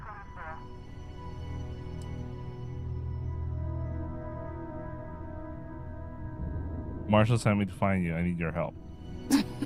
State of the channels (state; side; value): identical; both; correlation 1.00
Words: Marshall sent me to find you. I need your help.